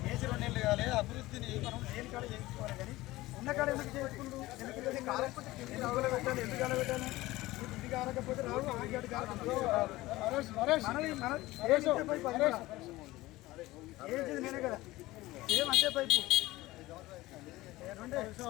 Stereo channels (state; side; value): quieter; right; 18.4 dB